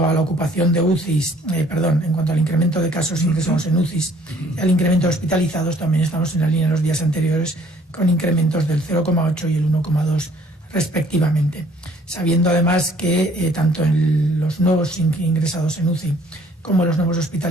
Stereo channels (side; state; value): both; normal; correlation 0.58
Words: a la ocupación de UCIs, en cuanto al incremento de casos ingresados en UCIs y al incremento de hospitalizados, también estamos en la línea de los días anteriores, con incrementos del 0,8 y el 1,2 respectivamente. Sabiendo además que tanto en los nuevos ingresados en UCI como los nuevos